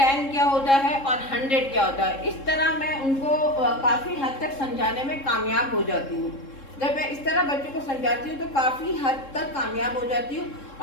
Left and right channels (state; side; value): late; right; 3.7 ms